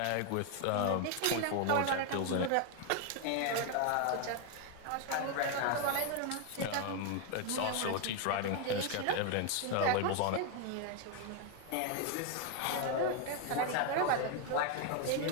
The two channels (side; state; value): both; different; correlation 0.01